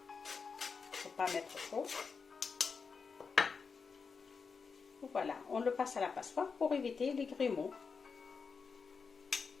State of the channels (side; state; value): right; quieter; 5.3 dB